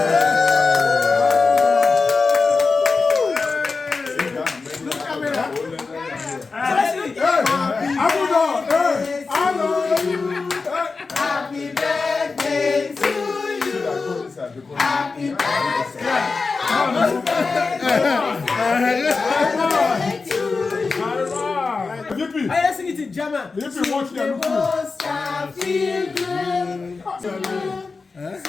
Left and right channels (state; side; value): quieter; right; 4.3 dB